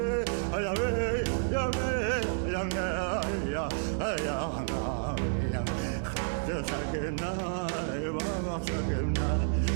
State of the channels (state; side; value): silent; left; digital silence